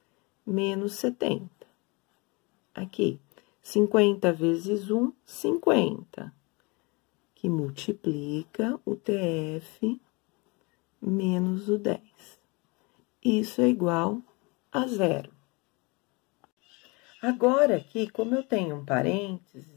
menos 70. Aqui, 50 vezes 1, 50. Que multiplica o TF menos o 10. Isso é igual a 0. Agora, aqui, como eu tenho um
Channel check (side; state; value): right; quieter; 27.9 dB